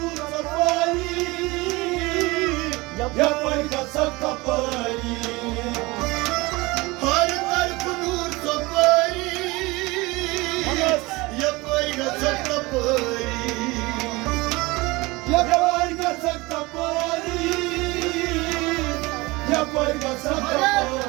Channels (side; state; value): left; quieter; 22.7 dB